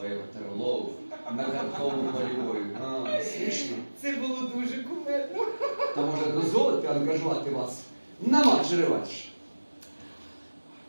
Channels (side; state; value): both; inverted; correlation -1.00